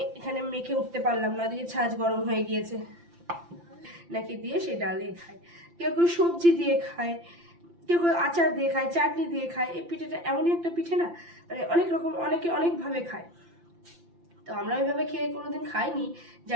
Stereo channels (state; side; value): late; left; 5.8 ms